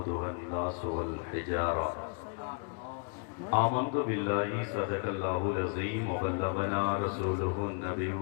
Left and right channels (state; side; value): quieter; right; 34.8 dB